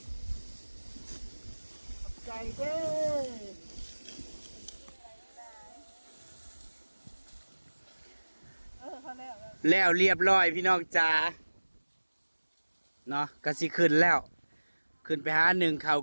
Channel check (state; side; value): inverted; both; correlation -1.00